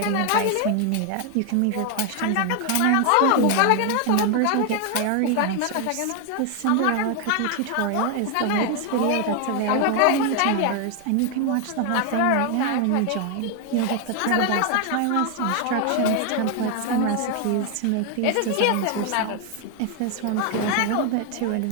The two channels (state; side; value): different; both; correlation 0.00